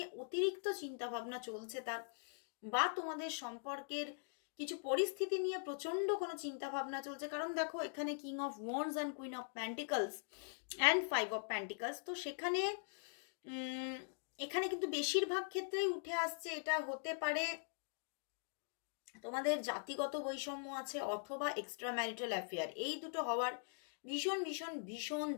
অতিরিক্ত চিন্তা ভাবনা চলছে তার, বা তোমাদের সম্পর্কের কিছু পরিস্থিতি নিয়ে প্রচন্ড কোনো চিন্তা ভাবনা চলছে। কারণ দেখো, এখানে king of wands and queen of pentacles and 5 of pentacles. তো এখানে কিন্তু বেশিরভাগ ক্ষেত্রেই উঠে আসছে, এটা হতে পারে তোমাদের জাতিগত বৈষম্য আছে অথবা এক্সট্রা ম্যারিটাল অ্যাফেয়ার। এই দুটো হওয়ার ভীষণ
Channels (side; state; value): right; silent; digital silence